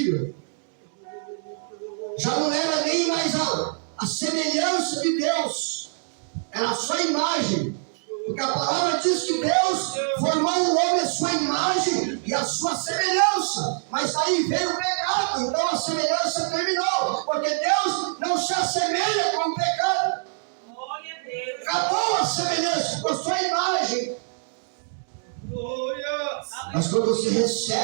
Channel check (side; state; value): left; silent; digital silence